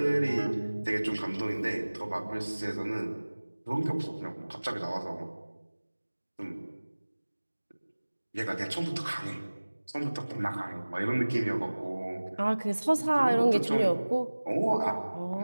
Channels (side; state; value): both; inverted; correlation -1.00